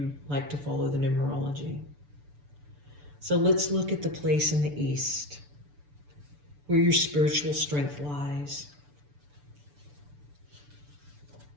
like to follow the numerology. So let's look at the place in the east, where your spiritual strength lies.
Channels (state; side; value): late; left; 6.9 ms